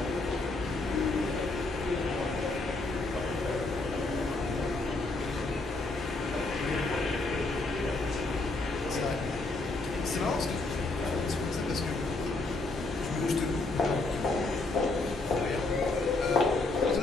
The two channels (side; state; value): right; quieter; 3.2 dB